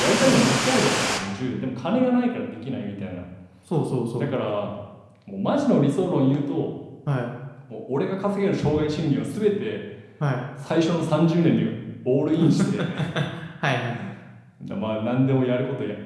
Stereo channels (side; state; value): both; identical; correlation 1.00